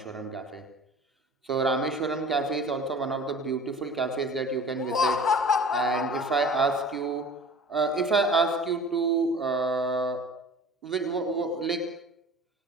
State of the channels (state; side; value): normal; both; correlation 0.43